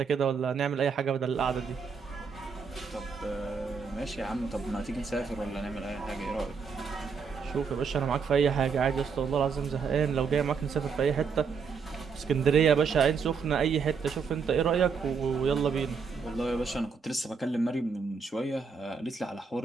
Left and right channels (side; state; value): left; quieter; 5.6 dB